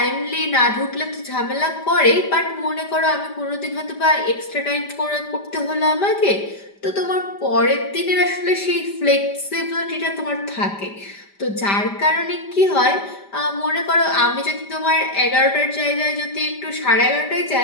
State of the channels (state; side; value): late; right; 5.0 ms